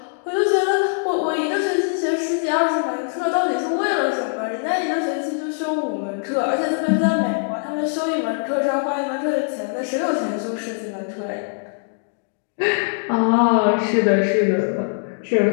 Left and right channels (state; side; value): silent; right; digital silence